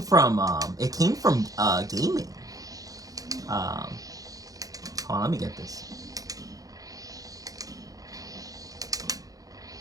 it came from gaming. Um, Hold on, let me get this.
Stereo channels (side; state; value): left; late; 0.17 ms